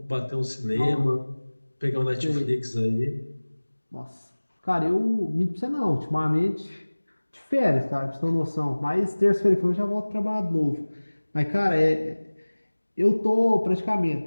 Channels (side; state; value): both; inverted; correlation -1.00